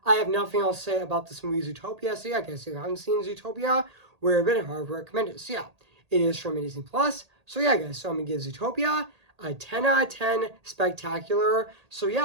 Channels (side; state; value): left; late; 1.8 ms